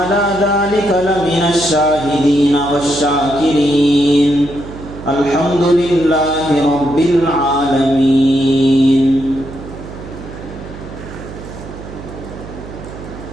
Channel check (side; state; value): right; noise; hum, 13 dB below the sound